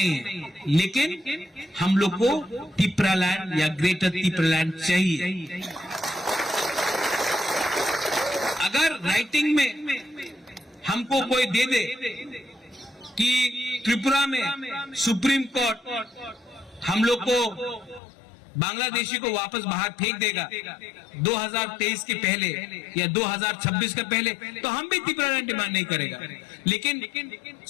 है। लेकिन हम लोग को तिप्रालैंड या ग्रेटर तिप्रालैंड चाहिए। अगर राइटिंग में हमको कोई दे दे कि त्रिपुरा में सुप्रीम कोर्ट हम लोग को बांग्लादेशी को वापस बाहर फेंक देगा 2023 के पहले या 2026 के पहले, तो हम भी तिप्रालैंड डिमांड नहीं करेगा। लेकिन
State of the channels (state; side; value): drops out; right; at 18.0 s